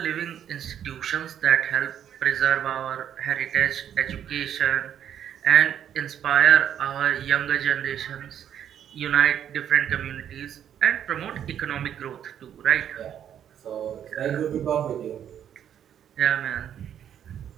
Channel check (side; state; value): left; quieter; 9.6 dB